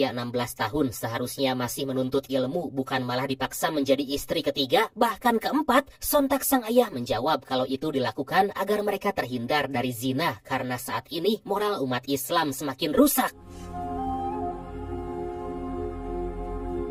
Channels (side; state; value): both; identical; correlation 1.00